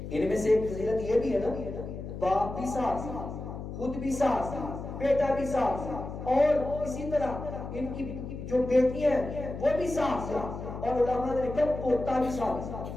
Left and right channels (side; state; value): left; noise; hum, 8 dB below the sound